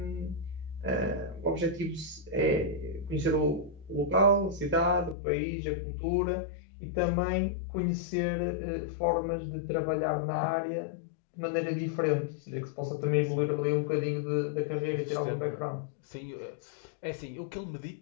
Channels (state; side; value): drops out; right; at 5.2 s